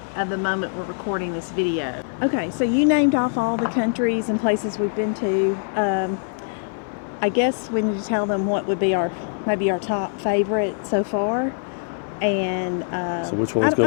of the moment we're recording this video. Okay, so you named off all the countries and places we've been to. I guess we need to tell them what would be maybe our top favorite so far. And so which one's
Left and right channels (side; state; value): right; silent; digital silence